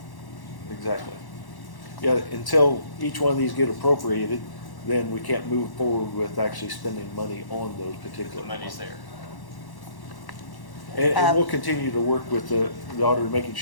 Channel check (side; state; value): right; late; 1.1 ms